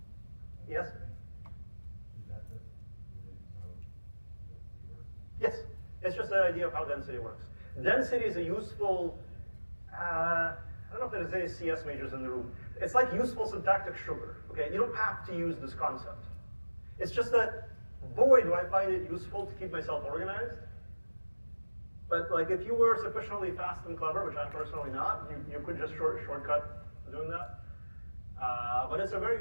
Yes? Is that just related to how density works? Yes, it's just the idea of how density works. Density is a useful, I don't know if there's any CS majors in the room. It's like useful syntactic sugar, okay? You don't have to use this concept. It's just that, boy, do I find it useful to keep myself organized. But like, if you were sufficiently fast and clever, which I'm personally not, you could just shortcut doing that. But it's a very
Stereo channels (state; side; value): inverted; both; correlation -1.00